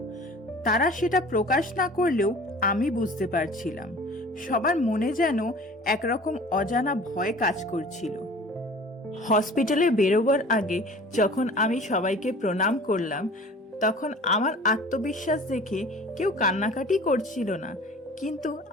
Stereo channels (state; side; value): normal; both; correlation 0.44